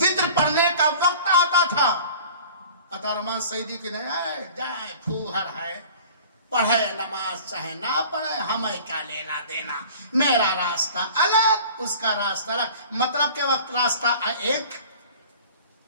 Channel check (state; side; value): inverted; both; correlation -0.45